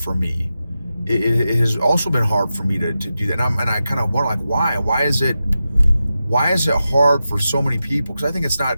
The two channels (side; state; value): both; inverted; correlation -0.91